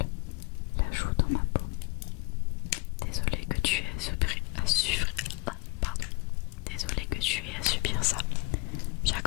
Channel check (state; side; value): quieter; right; 26.8 dB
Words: la joue dans ma peau. Désolée que tu aies Désolée que tu aies à subir ça.